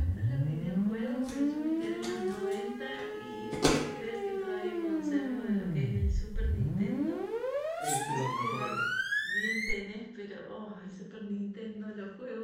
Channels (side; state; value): both; identical; correlation 1.00